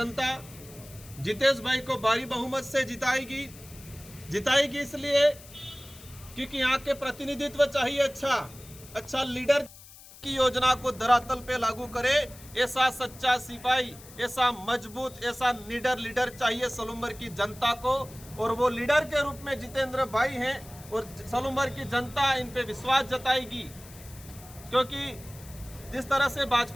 जितेश भाई को भारी बहुमत से जिताएगी इसलिए क्योंकि यहाँ के प्रतिनिधित्व चाहिए, अच्छा लीडर की योजना को धरातल पे लागू करे, ऐसा सच्चा सिपाही, ऐसा मजबूत, ऐसा निडर लीडर चाहिए सलूम्बर की जनता को। और वो लीडर के रूप में जितेंद्र भाई हैं और सलूम्बर की जनता इन पे विश्वास जताएगी। क्योंकि जिस तरह से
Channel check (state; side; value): noise; left; hiss, 19 dB below the sound